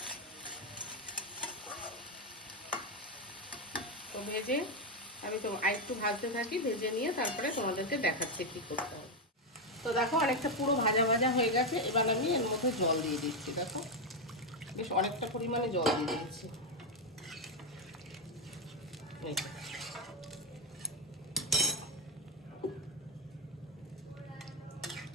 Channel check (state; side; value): normal; both; correlation 0.05